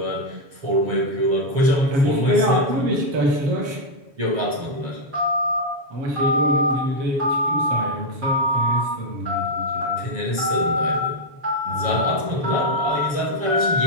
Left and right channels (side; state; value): left; late; 7.2 ms